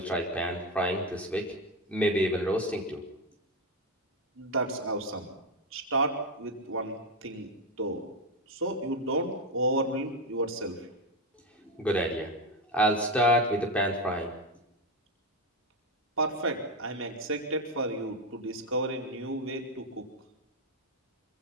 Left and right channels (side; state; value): both; normal; correlation 0.11